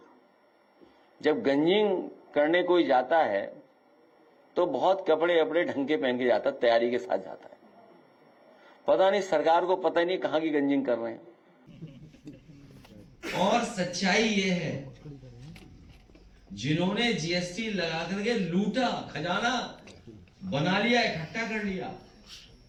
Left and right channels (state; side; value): identical; both; correlation 1.00